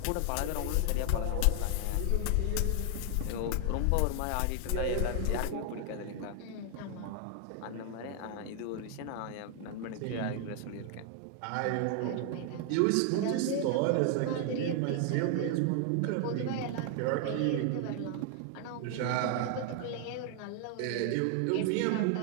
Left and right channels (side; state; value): both; different; correlation 0.00